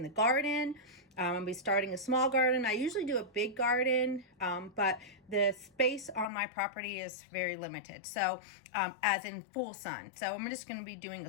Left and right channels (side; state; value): right; drops out; at 6.2 s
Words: the garden. I'm going to be starting a small garden. I usually do a big garden, but the space on my property is very limited. So as in full sun. So I'm just going to be doing